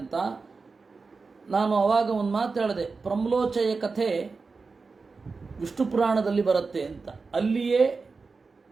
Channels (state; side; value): quieter; left; 4.3 dB